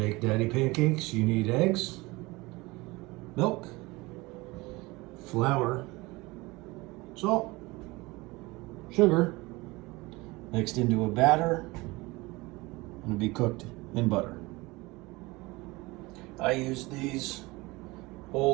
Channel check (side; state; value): left; quieter; 22.7 dB